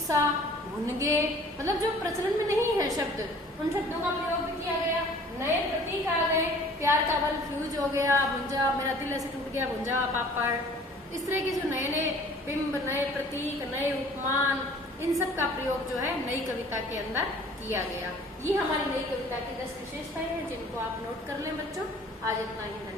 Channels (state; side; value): normal; both; correlation 0.51